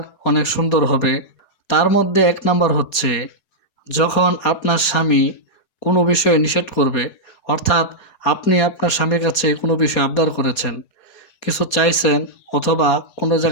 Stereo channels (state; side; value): late; right; 4.2 ms